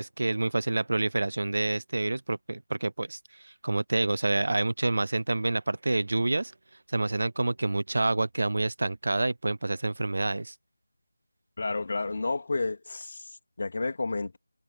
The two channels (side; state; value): both; inverted; correlation -0.98